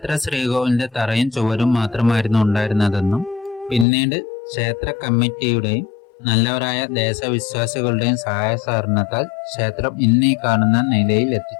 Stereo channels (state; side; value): drops out; right; at 3.9 s